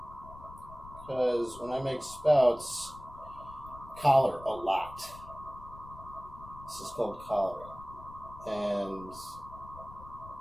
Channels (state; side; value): noise; left; rumble, 17 dB below the sound